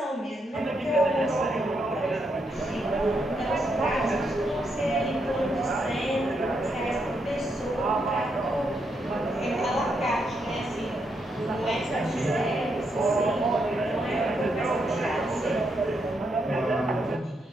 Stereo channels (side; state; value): both; normal; correlation 0.79